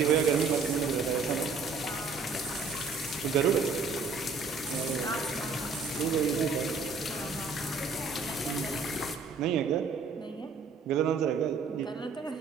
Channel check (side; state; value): left; quieter; 4.6 dB